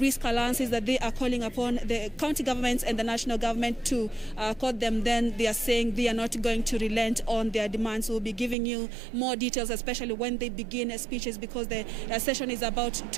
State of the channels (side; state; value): left; drops out; at 8.6 s